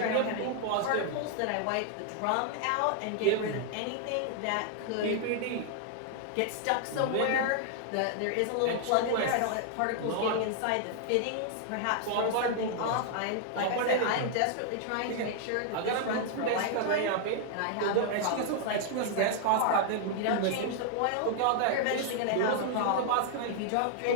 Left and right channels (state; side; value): different; both; correlation 0.00